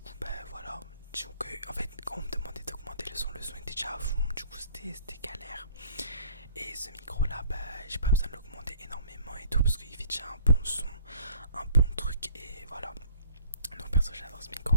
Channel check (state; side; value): inverted; both; correlation -0.54